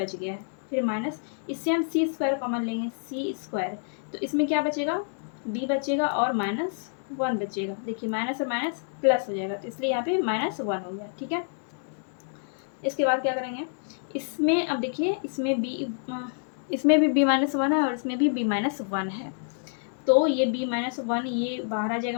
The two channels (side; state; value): right; silent; digital silence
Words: गया है। फिर माइनस, इससे हम c² कॉमन लेंगे, c², तो इसमें क्या बचेगा, b बचेगा और माइनस 1 बचेगा। देखिए माइनस और माइनस प्लस हो जाएगा, तो इसलिए यहाँ पे माइनस 1 हो गया। ठीक है, इसके बाद क्या करेंगे, इसमें अब देखिए इसमें भी b माइनस 1 है और इसमें भी b माइनस 1 है, तो ये b माइनस 1 ये बाहर आ जाएगा,